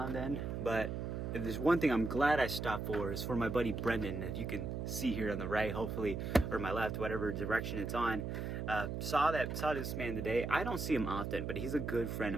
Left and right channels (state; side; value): noise; right; hum, 3 dB below the sound